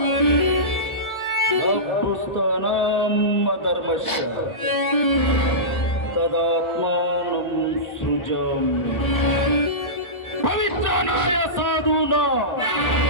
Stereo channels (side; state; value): right; late; 1.4 ms